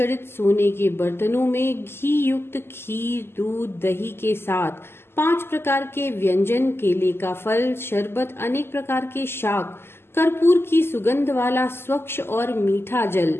सोने के बर्तनों में घी युक्त खीर, दूध, दही के साथ 5 प्रकार के व्यंजन, केले का फल, शरबत, अनेक प्रकार के शाक, कर्पूर की सुगंध वाला स्वच्छ और मीठा जल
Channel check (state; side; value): late; right; 0.12 ms